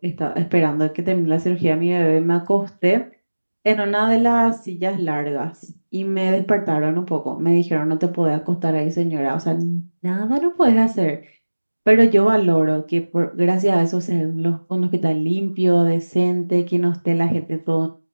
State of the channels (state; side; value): inverted; both; correlation -1.00